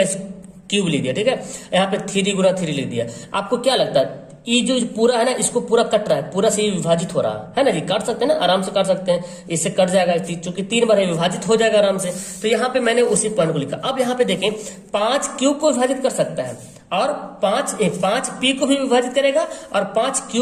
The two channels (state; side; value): identical; both; correlation 1.00